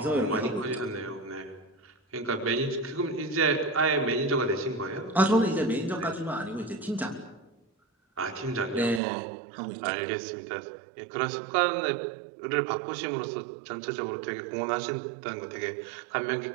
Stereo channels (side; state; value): left; drops out; at 9.0 s